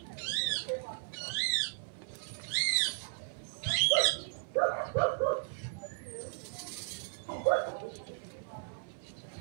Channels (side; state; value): left; silent; 54 dB below the other